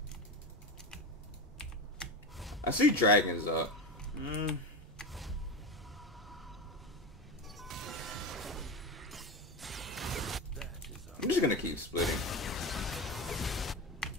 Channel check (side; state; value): both; normal; correlation 0.22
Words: I see dragons up. I'm just gonna keep splitting.